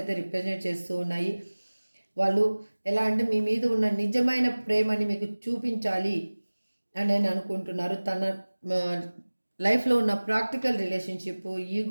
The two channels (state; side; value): inverted; both; correlation -1.00